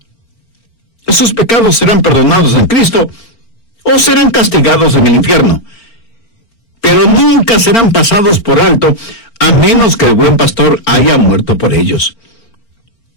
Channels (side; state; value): right; late; 4.4 ms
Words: Esos pecados serán perdonados en Cristo o serán castigados en el infierno, pero nunca serán pasados por alto a menos que el buen pastor haya muerto por ellos.